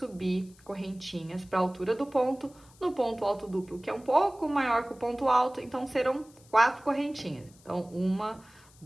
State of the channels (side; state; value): left; noise; hiss, 27 dB below the sound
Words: correntinhas para a altura do ponto, no ponto alto duplo, que é um pouco maior que o ponto alto, então serão 4 correntinhas. Então, 1,